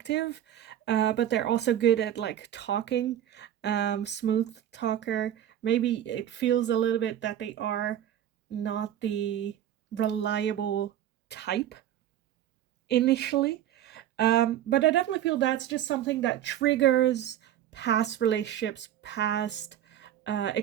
but they're also good at like talking, smooth talker. Maybe it feels a little bit that they are not the reliable type initially. But I definitely feel that's just something that triggers past relationships, past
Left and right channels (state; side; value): quieter; left; 11.3 dB